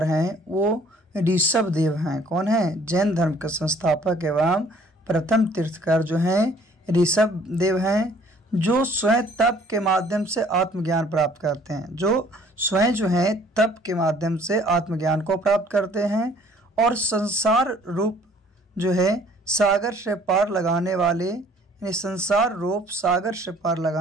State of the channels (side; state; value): both; normal; correlation 0.57